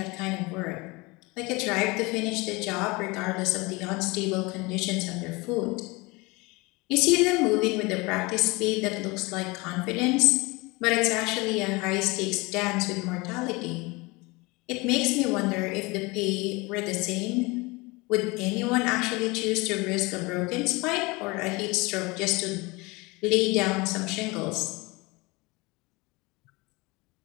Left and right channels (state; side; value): quieter; right; 24.7 dB